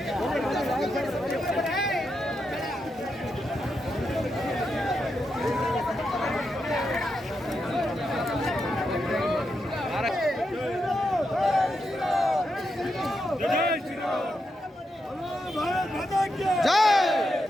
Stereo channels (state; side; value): normal; both; correlation 0.85